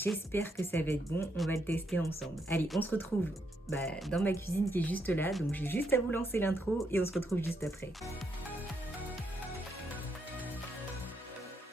que ça va être bon, on va le tester ensemble. Allez, on se retrouve dans ma cuisine qui est juste là, donc j'ai juste à vous lancer l'intro et on se retrouve juste après.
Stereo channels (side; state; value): both; normal; correlation 0.77